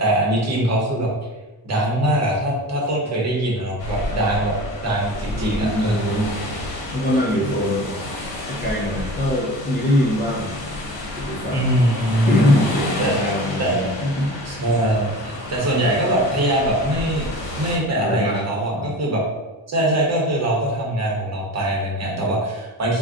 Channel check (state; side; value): normal; both; correlation 0.35